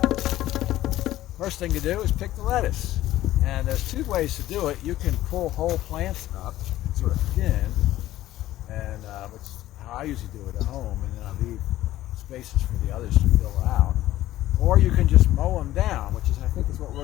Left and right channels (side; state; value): right; quieter; 14.7 dB